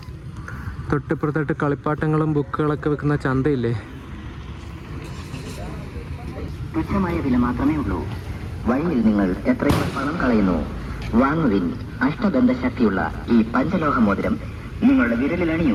തൊട്ടിപ്പുറത്തായിട്ട് കളിപ്പാട്ടങ്ങളും ബുക്കുകളൊക്കെ വെക്കുന്ന ചന്തയില്ലേ. തുച്ഛമായ വില മാത്രമേ ഉള്ളൂ. വഴിയിൽ നിങ്ങൾ എത്രയോ പണം കളയുന്നു. വാങ്ങുവിൻ അഷ്ടബന്ധ ശക്തിയുള്ള ഈ പഞ്ചലോഹ മോതിരം നിങ്ങളുടെ വിരലിൽ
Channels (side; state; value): both; identical; correlation 1.00